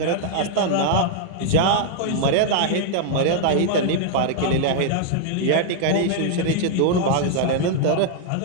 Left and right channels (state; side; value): different; both; correlation -0.01